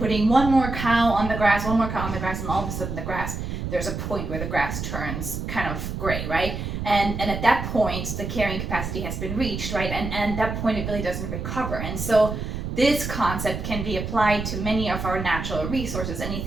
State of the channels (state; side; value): noise; right; rumble, 5 dB below the sound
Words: one more cow on the grass, and all of a sudden the grass, there's a point where the grass turns kind of gray, right? And at that point, the carrying capacity has been reached, right? And at that point, it really doesn't recover. And so this concept can be applied to many of our natural resources,